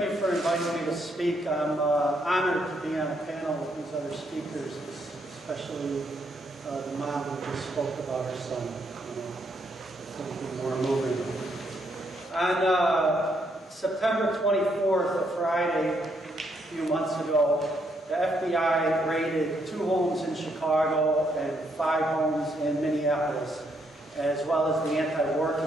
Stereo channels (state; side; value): normal; both; correlation 0.74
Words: you for inviting me to speak. I'm honored to be on a panel with these other speakers, especially the mom who just spoke about her son. It's going to be more moving. On September 24th, a Friday, a few months ago, the FBI raided 2 homes in Chicago and 5 homes in Minneapolis, as well as the Anti-War